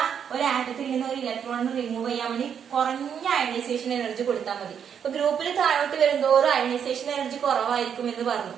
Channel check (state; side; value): quieter; left; 7.9 dB